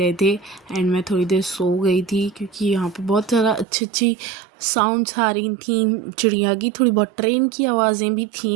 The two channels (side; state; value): left; drops out; at 3.7 s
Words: थे एंड मैं थोड़ी देर सो गई थी क्योंकि यहाँ पे बहुत ज़्यादा अच्छी अच्छी साउंड्स आ रही थी चिड़िया की। थोड़ी बहुत ट्रेन की आवाज़ें भी